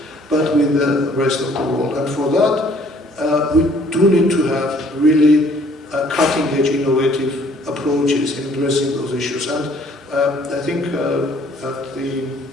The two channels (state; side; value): normal; both; correlation 0.59